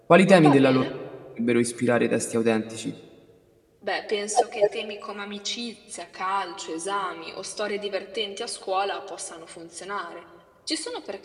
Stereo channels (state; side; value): identical; both; correlation 1.00